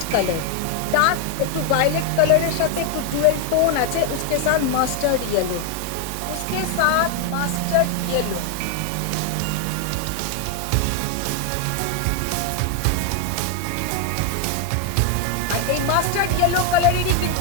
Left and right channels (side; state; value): both; different; correlation 0.01